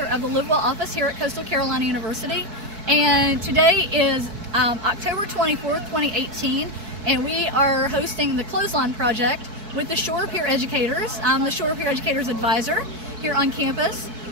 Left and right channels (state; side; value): late; left; 4.6 ms